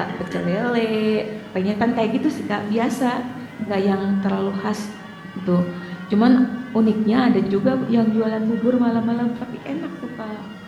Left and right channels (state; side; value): identical; both; correlation 1.00